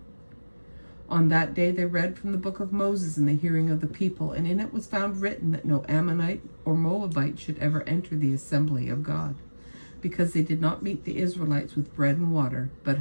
On that day they read from the book of Moses in the hearing of the people, and in it was found written that no Ammonite or Moabite should ever enter the assembly of God, because they did not meet the Israelites with bread and water, but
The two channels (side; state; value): both; inverted; correlation -1.00